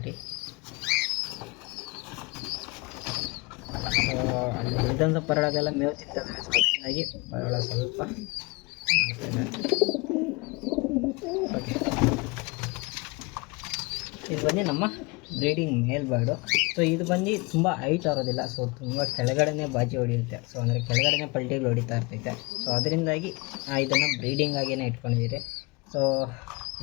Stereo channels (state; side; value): quieter; right; 26.3 dB